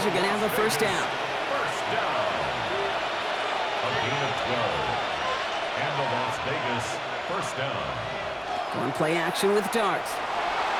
are going to have the 1st down. First down. A gain of 12. And the Las Vegas 1st down. One play action with Dart.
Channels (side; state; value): both; identical; correlation 1.00